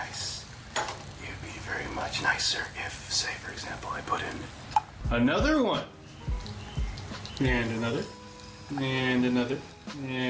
It would be very much nicer if, say, for example, I put in another one. And another. And another.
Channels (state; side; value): identical; both; correlation 1.00